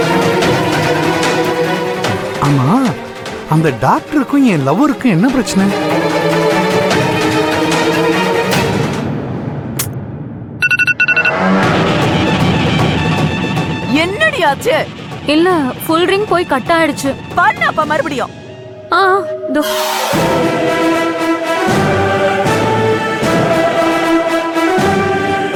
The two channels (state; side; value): identical; both; correlation 1.00